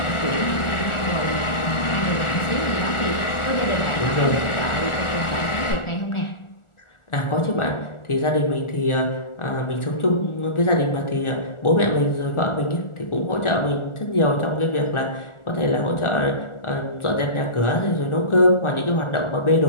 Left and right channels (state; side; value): late; right; 1.4 ms